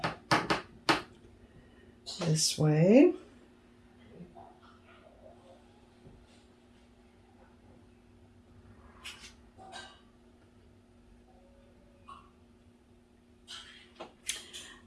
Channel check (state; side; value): identical; both; correlation 1.00